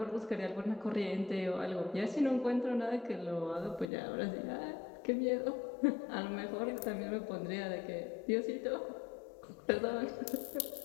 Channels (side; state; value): right; drops out; at 3.9 s